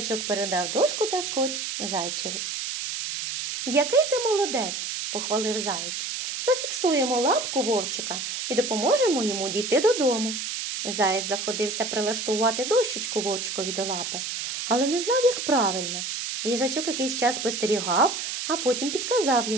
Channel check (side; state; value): right; noise; hiss, 4 dB below the sound